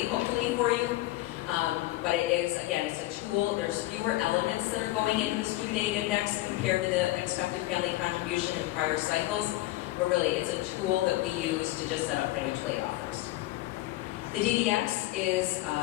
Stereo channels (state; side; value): quieter; right; 17.6 dB